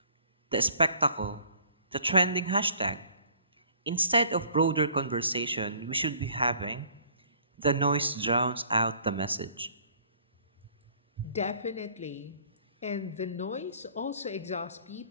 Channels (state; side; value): inverted; both; correlation -0.56